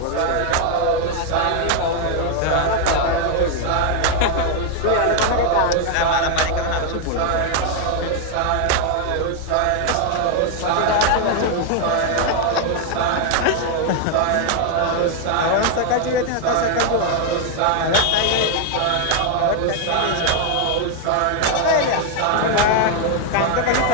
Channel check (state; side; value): different; both; correlation 0.01